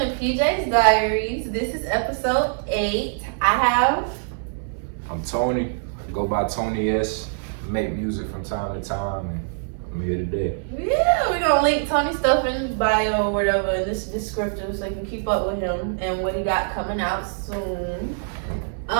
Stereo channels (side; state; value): left; silent; 63 dB below the other